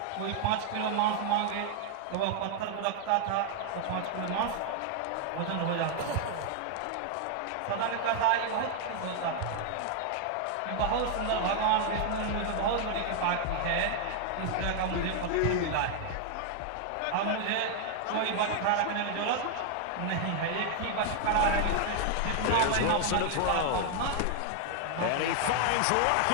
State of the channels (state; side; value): different; both; correlation 0.00